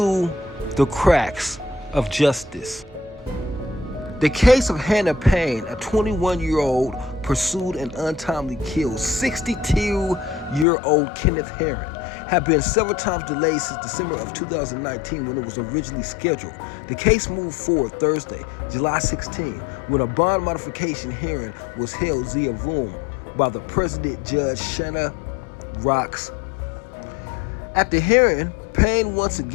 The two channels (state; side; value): drops out; right; at 10.7 s